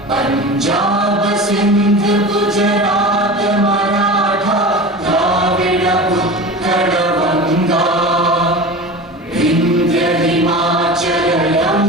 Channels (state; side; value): normal; both; correlation 0.32